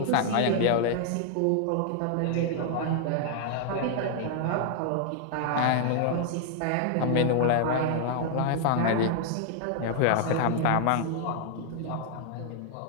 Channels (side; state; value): both; different; correlation 0.00